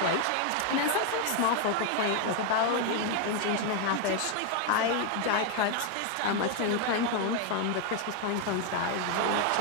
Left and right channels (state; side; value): different; both; correlation 0.01